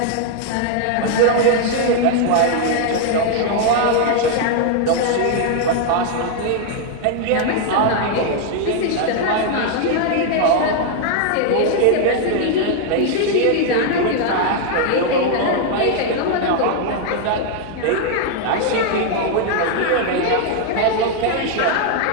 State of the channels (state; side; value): different; both; correlation 0.00